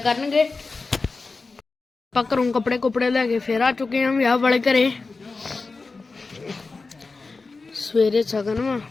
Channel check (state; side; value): quieter; right; 4.0 dB